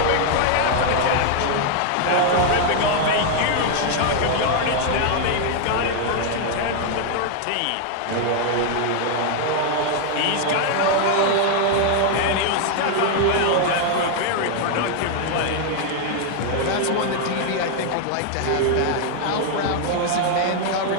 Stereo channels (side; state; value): both; different; correlation 0.00